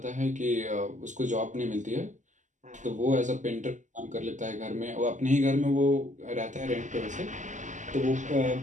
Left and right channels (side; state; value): left; late; 0.36 ms